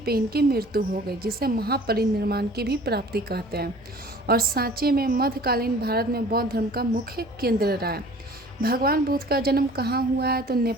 इनकी मृत्यु हो गई, जिसे महापरिनिर्वाण की भी प्राप्ति कहते हैं। और सांची में मध्यकालीन भारत में बौद्ध धर्म का मुख्य केंद्र रहा है। भगवान बुद्ध का जन्म कहाँ हुआ है, तो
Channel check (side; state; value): right; noise; rumble, 28 dB below the sound